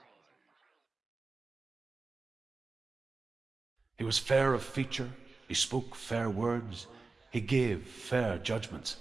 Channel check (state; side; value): quieter; left; 3.8 dB